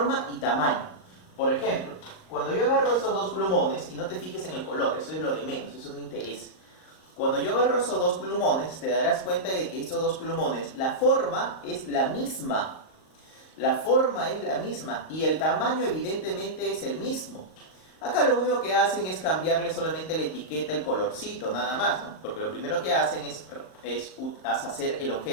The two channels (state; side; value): late; right; 38 ms